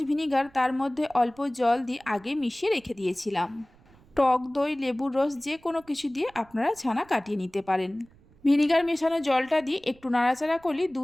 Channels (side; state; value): right; noise; rumble, 28 dB below the sound